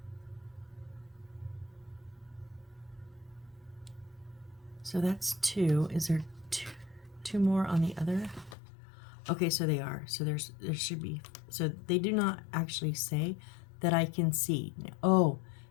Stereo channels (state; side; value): drops out; right; at 8.6 s